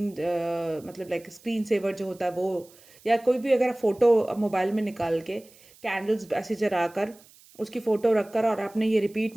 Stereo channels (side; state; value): right; noise; hiss, 26 dB below the sound